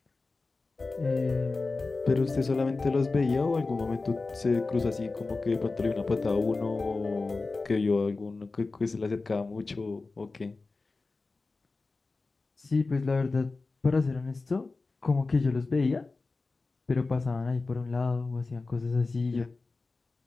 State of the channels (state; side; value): quieter; right; 3.7 dB